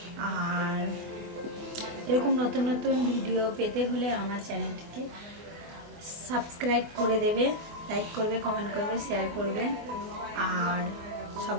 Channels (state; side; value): late; left; 24 ms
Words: আর এরকম নতুন নতুন ভিডিও পেতে হলে আমার চ্যানেলটিকে সাবস্ক্রাইব করে দেবে, লাইক করবে, কমেন্ট করবে, শেয়ার করবে। আর